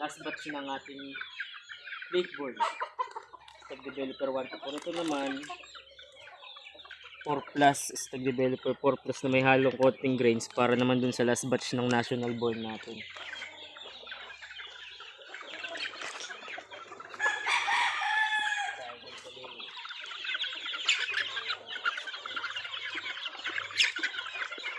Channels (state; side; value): identical; both; correlation 1.00